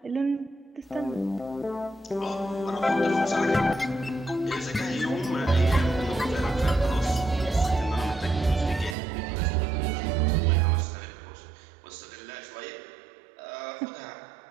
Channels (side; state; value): left; drops out; at 9.0 s